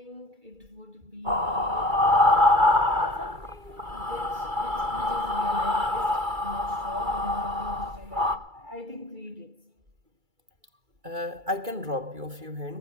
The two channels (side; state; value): left; late; 2.3 ms